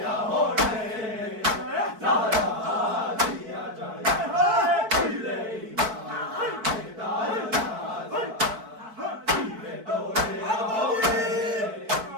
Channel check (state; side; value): late; left; 4.6 ms